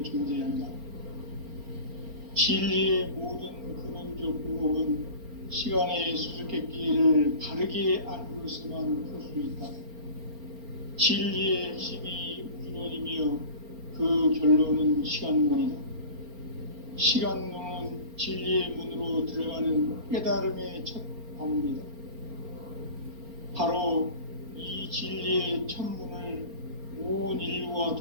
존재한다. 진리의 모든 근원적 의혹은 시간의 수수께끼를 바르게 알므로서만 풀 수 있다. 진리의 핵심이 우주론이며 그 결론은 시간론이다. 시간론은 진리의 문으로 들어가는 깨달음의 첫 방문이다. 바로 이 진리의 첫 문을 온 인류가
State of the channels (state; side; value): late; left; 4.4 ms